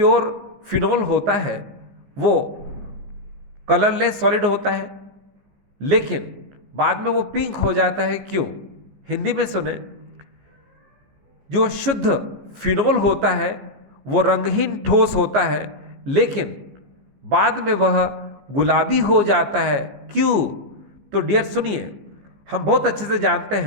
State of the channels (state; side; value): late; left; 14 ms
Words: फिनॉल होता है वो कलरलेस सॉलिड होता है, लेकिन बाद में वो पिंक हो जाता है, क्यों? हिंदी में सुने, जो शुद्ध फिनॉल होता है वो रंगहीन ठोस होता है, लेकिन बाद में वह गुलाबी हो जाता है, क्यों? तो डियर सुनिए, हम बहुत अच्छे से जानते